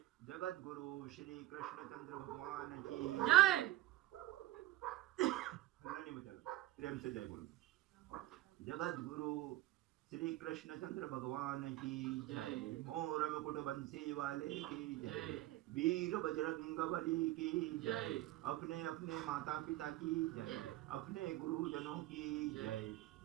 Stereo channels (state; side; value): quieter; left; 16.3 dB